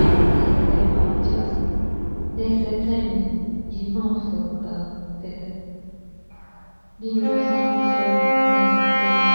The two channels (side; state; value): both; inverted; correlation -1.00